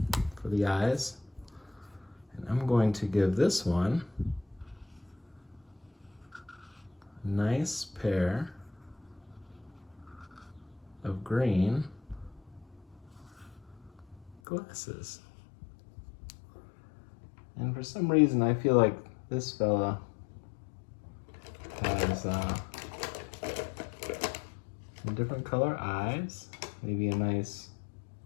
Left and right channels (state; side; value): drops out; right; at 14.4 s